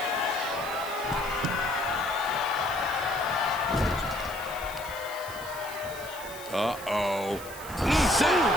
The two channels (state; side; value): noise; left; hiss, 16 dB below the sound